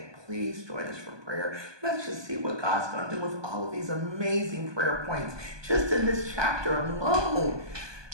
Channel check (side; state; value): left; late; 1.2 ms